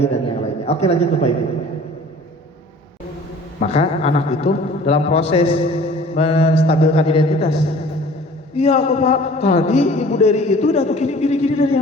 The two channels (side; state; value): both; normal; correlation 0.48